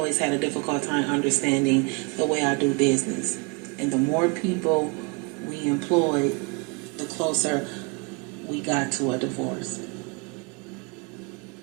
had a difficult time understanding the way I do business. And the more people we employed, the closer we got to a divorce.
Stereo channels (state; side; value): quieter; left; 31.0 dB